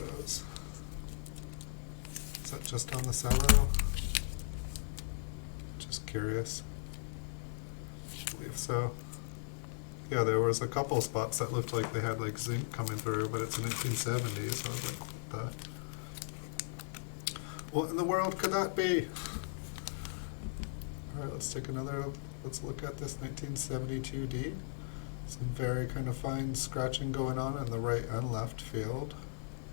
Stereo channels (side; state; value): right; silent; 53 dB below the other